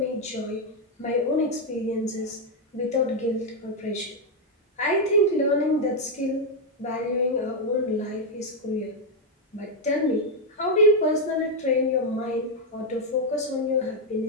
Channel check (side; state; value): both; normal; correlation 0.02